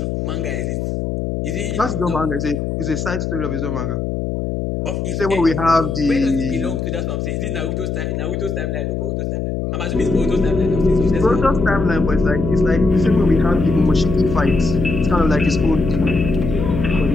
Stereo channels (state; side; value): noise; left; hum, 2 dB below the sound